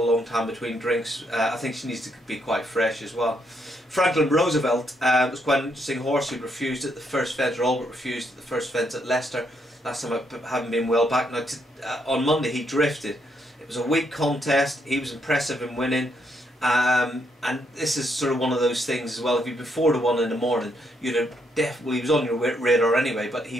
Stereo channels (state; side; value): normal; both; correlation 0.75